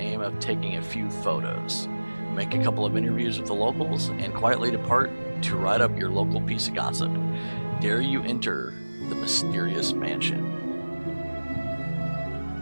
of taking a few photos, make a couple of interviews with the locals, and quietly depart to write up your local piece of gossip. Dare you enter the mysterious mansion?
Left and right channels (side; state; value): both; inverted; correlation -1.00